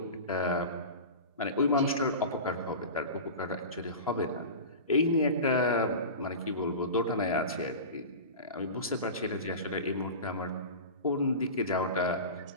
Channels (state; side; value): inverted; both; correlation -0.30